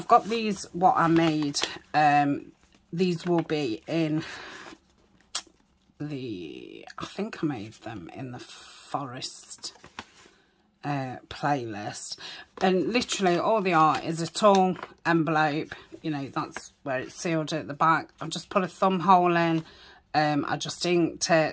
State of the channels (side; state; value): both; identical; correlation 1.00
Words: got these, what I made, these will be in the, I think I made them in the forest playlist, and literally all they are is a tall envelope, you know, that's where it's sealed at the back. I've just put a thumb hole in, I just inked